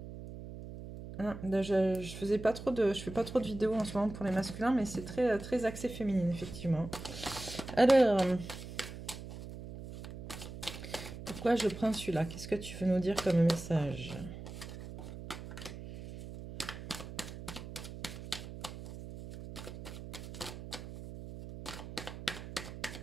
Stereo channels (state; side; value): noise; right; hum, 11 dB below the sound